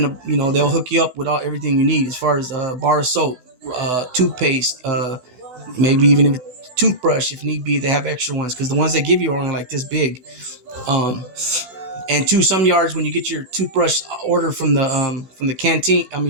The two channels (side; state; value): left; late; 16 ms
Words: they'll hook you up with everything you need as far as bar of soap, toothpaste, maybe even a toothbrush if need be. They have extra ones because the ones they give you are only like this big. And some yards, when you get your toothbrush order from the canteen,